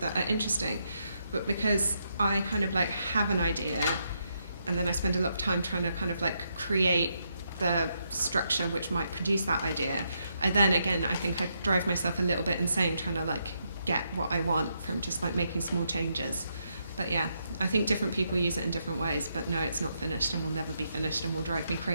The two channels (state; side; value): inverted; both; correlation -0.79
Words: are interesting. But because I kind of like have an idea and then I spend a lot of time trying to kind of like create the structure which might produce that idea, I think I drive myself a little bit insane trying to like get what I want from just like making small changes. But yeah, I think different people use it in different ways, but no, it's not finished and will never be finished and will drive me